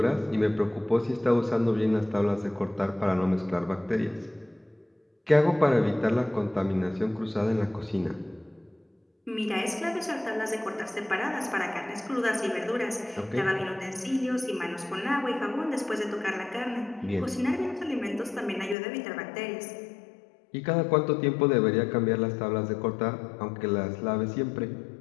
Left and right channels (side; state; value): right; drops out; at 18.8 s